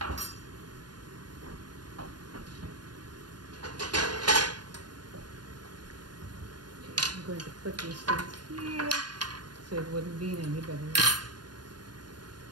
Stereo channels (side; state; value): left; late; 0.70 ms